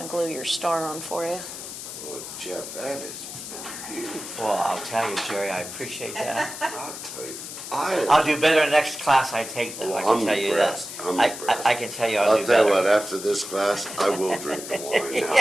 glue your star on for you. Well, Jeff, that has been beautiful. Well, I'll tell you, Jerry, I appreciate that. I'll tell you. I'll do better next class I take, though. I Well, can I'm tell you impressed. that. I'm I impressed. can tell you I'll do I'll tell better. you what, after this class, I will drink the wine now.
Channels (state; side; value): noise; left; hiss, 10 dB below the sound